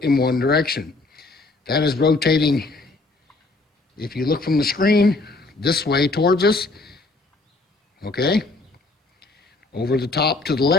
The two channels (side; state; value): right; quieter; 3.3 dB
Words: in one direction. That is rotating, if you look from the screen, this way towards us, okay? Over the top to the